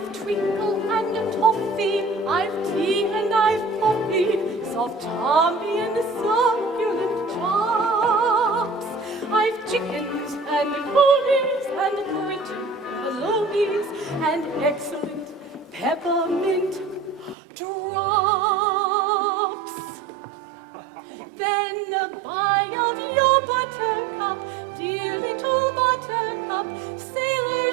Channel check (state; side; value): drops out; left; at 17.4 s